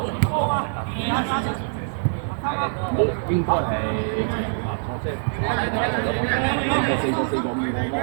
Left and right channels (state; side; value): silent; left; 61 dB below the other